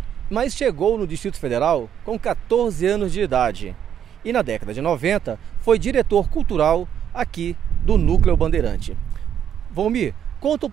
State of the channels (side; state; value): left; quieter; 9.3 dB